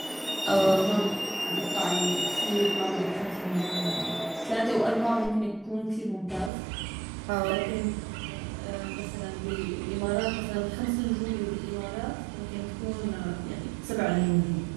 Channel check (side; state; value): left; drops out; at 6.5 s